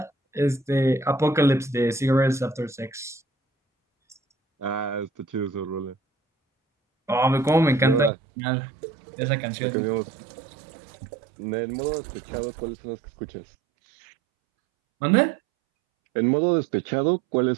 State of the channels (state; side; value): drops out; left; at 8.1 s